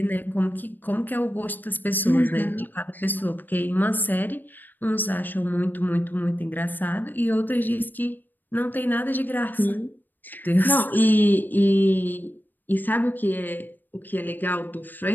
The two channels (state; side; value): late; right; 0.090 ms